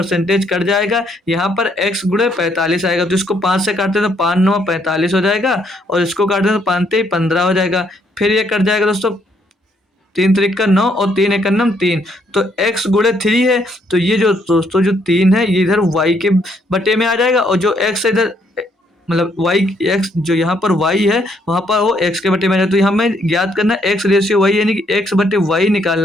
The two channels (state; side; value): normal; both; correlation 0.71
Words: कट जाएगा, यहाँ पर x गुणे 45 आएगा, तो इसको 5 से काटते हैं तो 5 9 45 हो जाएगा, और इसको काटते हैं तो 5 3 15 हो जाएगा। फिर ये कट जाएगा दोस्तों, 3 3 9 और 3 1 3। तो x गुणे 3 है, तो ये जो दोस्तों जो 3 है ये इधर y के बटे में आ जाएगा, और जो x है इधर मतलब y x जो यहाँ पर y है वहाँ पर वो x के बटे में आ जाए। तो यहाँ हमें ज्ञात करना x रेशियो y यानी कि x बटे y